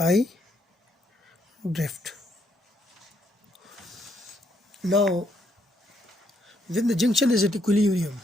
drift. Now when the junction is at equilibrium,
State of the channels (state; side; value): normal; both; correlation 0.74